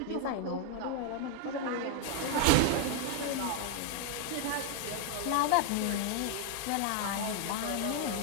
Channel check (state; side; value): different; both; correlation 0.00